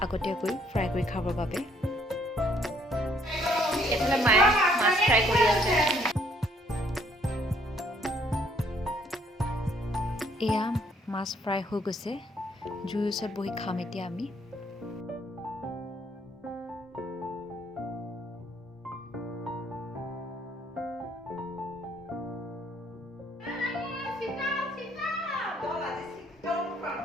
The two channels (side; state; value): both; normal; correlation 0.65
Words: আগতীয়াকৈ ফ্ৰাই কৰি খাবৰ বাবে। মায়ে মাছ ফ্ৰাই কৰি আছে। এয়া মাছ ফ্ৰাই হৈ গৈছে। জুইৰ ওচৰত বহি খাম এতিয়া আমি।